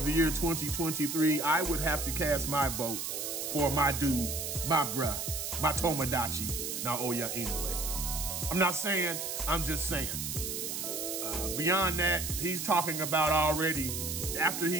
the Year 2023. I would have to cast my vote for my dude, my bruh, my Tomodachi, Naoya Inoue. I'm not saying, I'm just saying. Beyond that, he's talking about already, after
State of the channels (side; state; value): right; noise; hiss, 4 dB below the sound